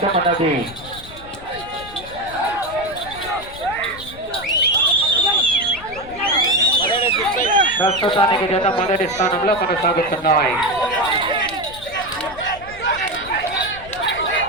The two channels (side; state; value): left; noise; rumble, 18 dB below the sound